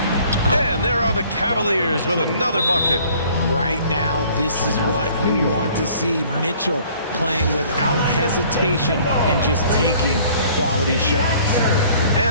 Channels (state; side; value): inverted; both; correlation -0.55